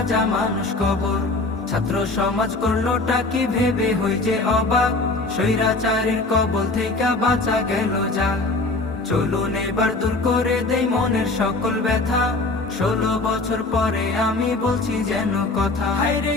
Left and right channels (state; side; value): quieter; right; 3.2 dB